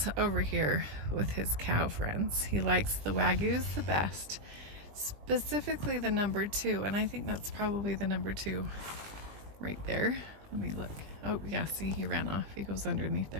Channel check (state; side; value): late; left; 20 ms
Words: over here with his cow friends. He likes the Wagyus the best, specifically the number 2. And I think that's probably the number 2 right there. Let me look. Oh yeah, see, he ran off. He goes underneath